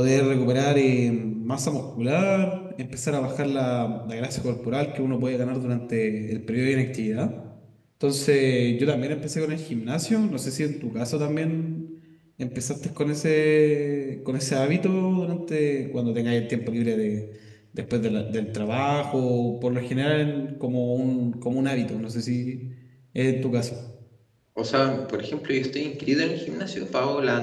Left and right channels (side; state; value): both; identical; correlation 1.00